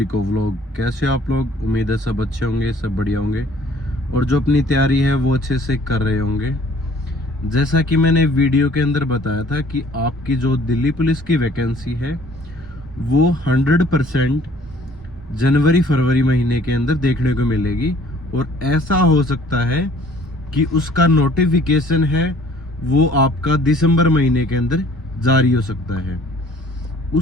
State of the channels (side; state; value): both; normal; correlation 0.56